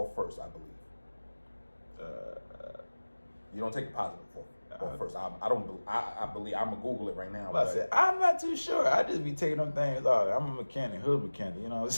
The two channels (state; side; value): inverted; both; correlation -1.00